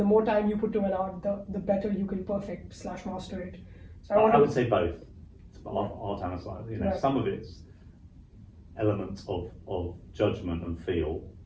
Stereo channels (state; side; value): identical; both; correlation 1.00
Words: more time you put to an art, the better you can perfect/master it. So I would say both. It's art and a science. Right. Some of it's elements of judgment and feel,